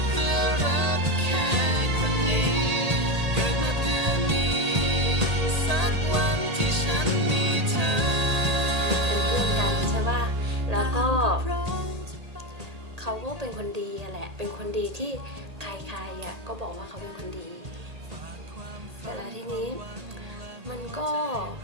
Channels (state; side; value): late; left; 1.8 ms